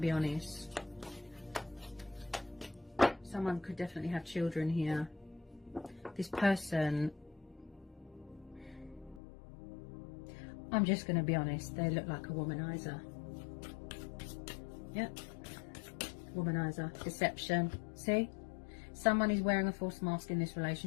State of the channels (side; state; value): right; drops out; at 9.2 s